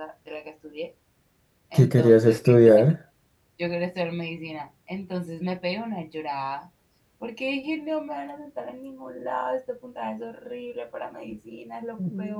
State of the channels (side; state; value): both; identical; correlation 1.00